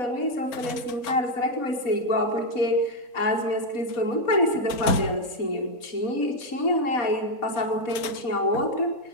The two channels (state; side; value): late; right; 4.3 ms